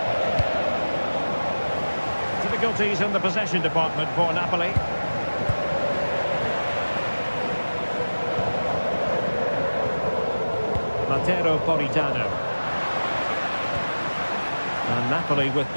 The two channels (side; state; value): both; inverted; correlation -1.00